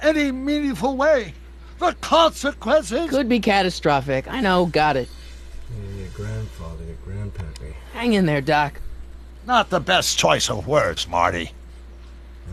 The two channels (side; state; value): both; identical; correlation 1.00